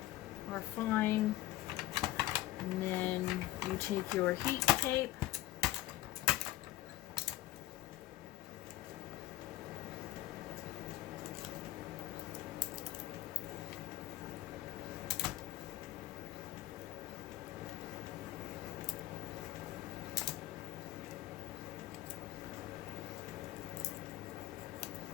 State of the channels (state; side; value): quieter; right; 15.7 dB